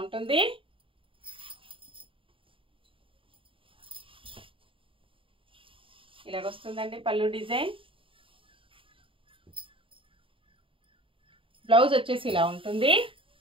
ఉంటుంది. ఇలాగ వస్తుందండి పళ్ళు డిజైన్. బ్లౌజ్ వచ్చేసి ఇలా ఉంటుంది.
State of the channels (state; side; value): late; left; 0.25 ms